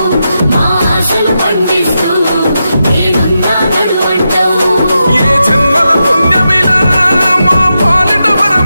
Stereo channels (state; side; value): inverted; both; correlation -0.87